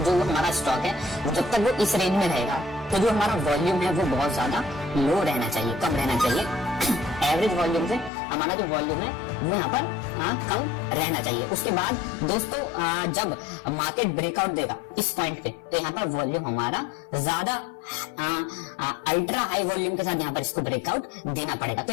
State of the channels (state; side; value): drops out; right; at 8.1 s